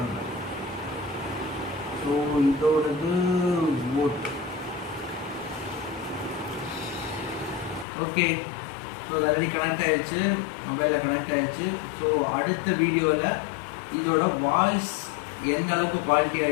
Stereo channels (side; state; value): right; drops out; at 7.9 s